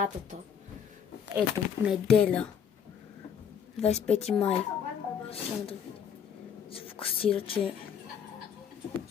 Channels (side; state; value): right; quieter; 7.8 dB